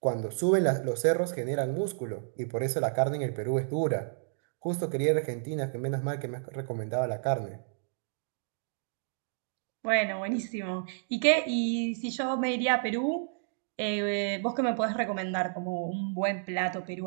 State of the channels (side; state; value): left; silent; digital silence